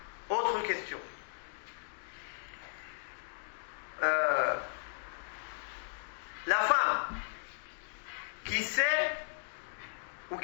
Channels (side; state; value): right; silent; digital silence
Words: Autre question. La femme qui sait ou